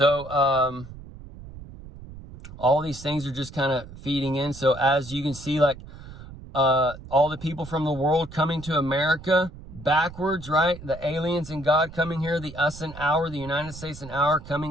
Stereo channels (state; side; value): noise; right; rumble, 15 dB below the sound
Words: these things are just kind of feeding in. So as you can see, like, all the people from the world coming to America backwards, right? The aliens and God coming here, the us and our, the United States and our,